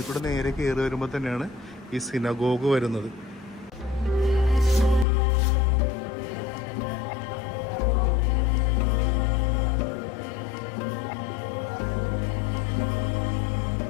കൂടെ നേരെ കയറി വരുമ്പോൾ തന്നെയാണ് ഈ സിനഗോഗ് വരുന്നത്.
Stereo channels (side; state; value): right; drops out; at 5.1 s